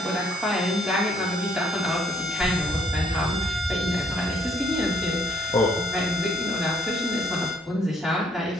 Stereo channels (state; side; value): normal; both; correlation 0.66